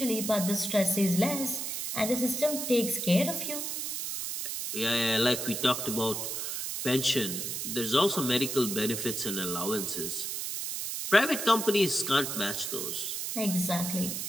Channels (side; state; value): right; noise; hiss, 3 dB below the sound